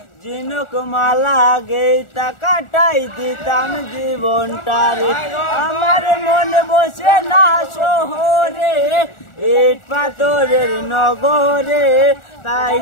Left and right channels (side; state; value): right; late; 1.4 ms